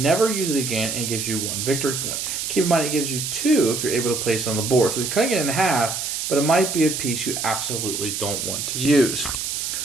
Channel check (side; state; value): right; noise; hiss, 3 dB below the sound